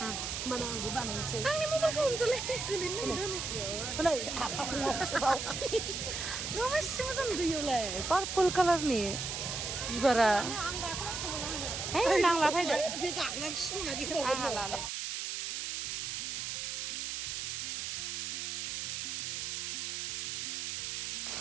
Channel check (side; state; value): right; noise; hiss, 3 dB below the sound